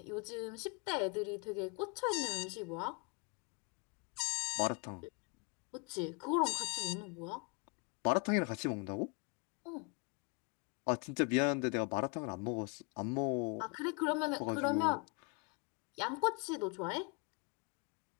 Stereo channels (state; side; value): quieter; right; 31.7 dB